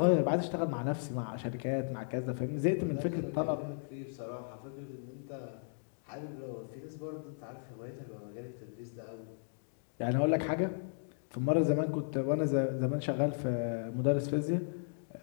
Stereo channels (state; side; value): silent; right; digital silence